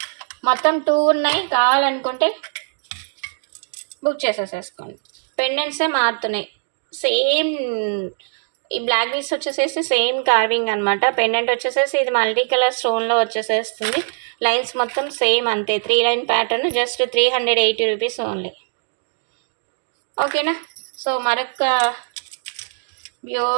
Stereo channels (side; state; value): left; silent; digital silence